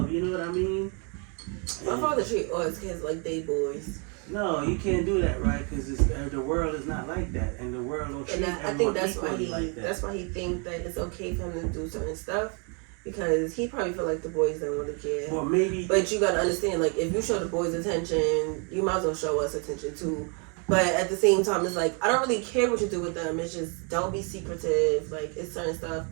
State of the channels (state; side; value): quieter; left; 36.0 dB